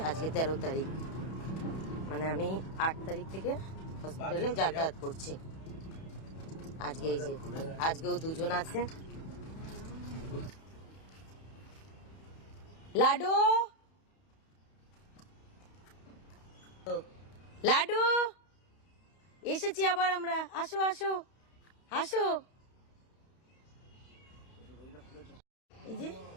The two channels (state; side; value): late; right; 31 ms